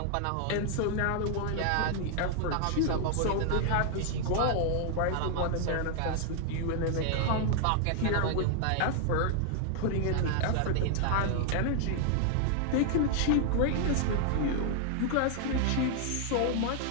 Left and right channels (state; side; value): different; both; correlation 0.00